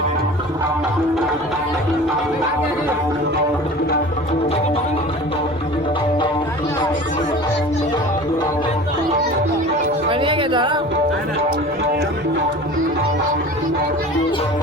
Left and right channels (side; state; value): both; normal; correlation 0.39